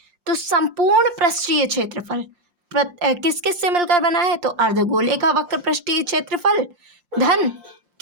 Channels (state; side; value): late; left; 5.7 ms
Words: तो संपूर्ण पृष्ठीय क्षेत्रफल किस किस से मिलकर बना है, तो अर्धगोले का वक्र पृष्ठीय क्षेत्रफल धन